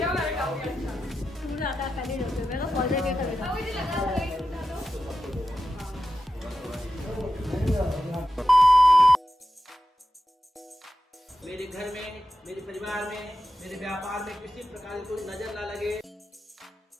मेरे काफी अच्छा। तूने आता खाली रखे मैं तो सोचे के करे था। मुझे लगा था एक उठा लो। मेरे घर में, मेरे परिवार में, मेरे व्यापार में किसी प्रकार की कोई नजर ना लगे।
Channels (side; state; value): both; normal; correlation 0.91